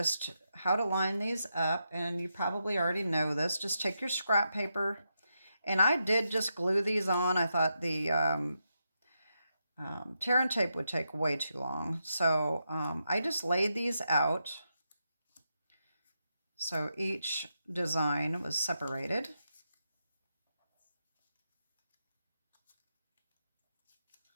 how to line these up. And you probably already know this. Just take your scrap paper. And I did just glue these on. I thought the Tear and tape would take way too long. So I just laid these out. So each design was separated.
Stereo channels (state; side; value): inverted; both; correlation -0.85